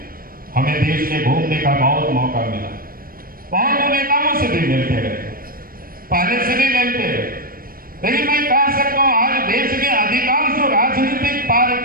हमें देश में घूमने का बहुत मौका मिला, बहुत नेताओं से भी मिलते रहे, पहले से भी मिलते रहे, लेकिन मैं कह सकता हूं आज देश के अधिकांश जो राजनीतिक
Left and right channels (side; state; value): left; late; 0.42 ms